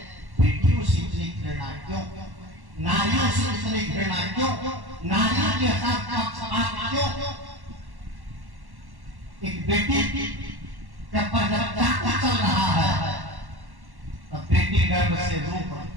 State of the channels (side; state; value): left; late; 1.1 ms